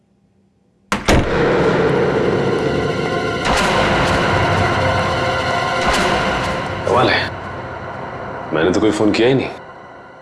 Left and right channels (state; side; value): identical; both; correlation 1.00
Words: कमाल है, मैंने तो कोई फोन किया ही नहीं,